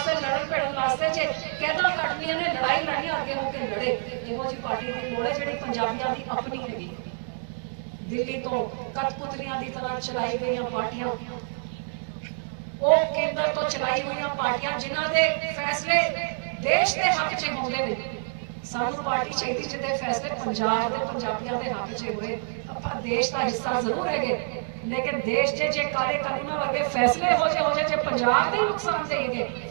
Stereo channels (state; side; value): silent; left; digital silence